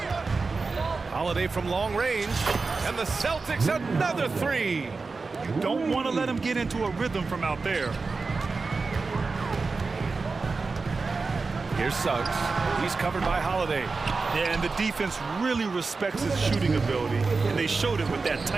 Holiday from long range. And the Celtics another 3. You don't want to let him get into a rhythm from out there. Here's Suggs. He's covered by Holiday. Yeah, and the defense really respects his shooting ability, and they showed it with that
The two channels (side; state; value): left; quieter; 4.2 dB